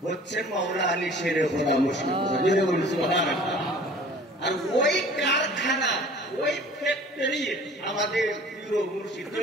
হচ্ছে মাওলা আলী শেরে খোদা মুশকিল কুশা। আর ওই কারখানা, ওই ফ্যাক্টরি আমাদের প্রিয় মুর্শিদ।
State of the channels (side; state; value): both; normal; correlation 0.48